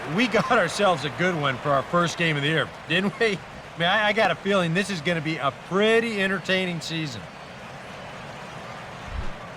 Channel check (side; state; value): both; identical; correlation 1.00